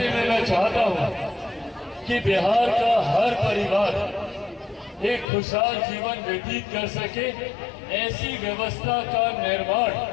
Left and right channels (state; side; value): drops out; right; at 5.2 s